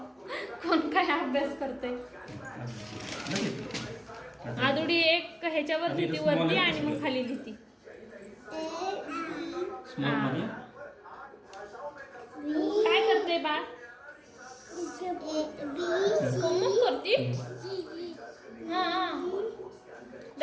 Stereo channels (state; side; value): identical; both; correlation 1.00